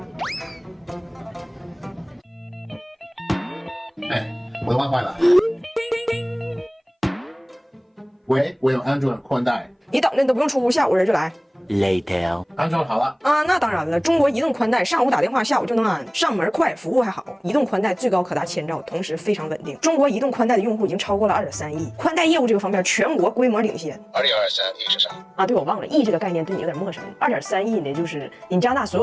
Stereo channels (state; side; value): identical; both; correlation 1.00